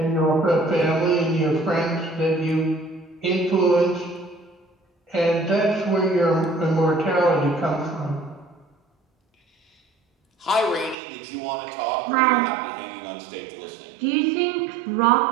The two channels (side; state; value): left; drops out; at 11.0 s